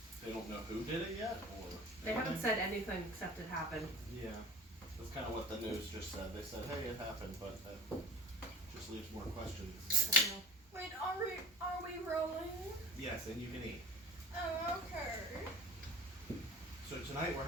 They don't know who did it yet, or They haven't said anything except it happened. Yeah, that's kind of what the news just said. They said, "Hey, it happened," but that just leaves more questions. I don't know. Wait, are we rolling? Yes, and you can eat. Oh, okay. So tonight we're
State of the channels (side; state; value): both; normal; correlation 0.41